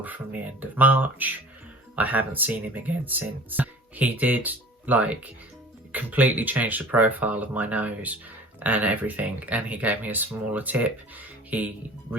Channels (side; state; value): both; normal; correlation 0.44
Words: from the end of March. I haven't seen him again since. He did like completely change the profile of my nose and everything, and he gave me a smaller tip. He